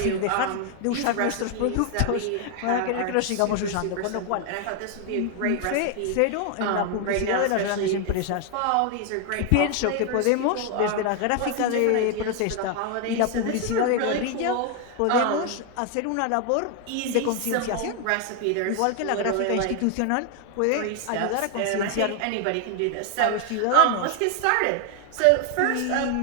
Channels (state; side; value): different; both; correlation 0.00